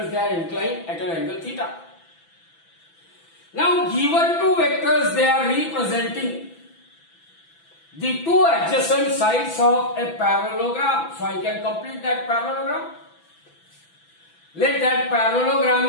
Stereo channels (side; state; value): right; late; 6.0 ms